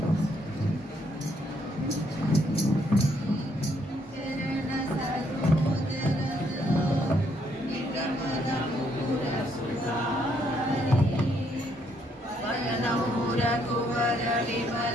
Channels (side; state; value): both; normal; correlation 0.71